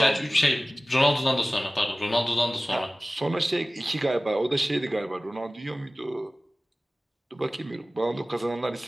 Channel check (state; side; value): normal; both; correlation 0.97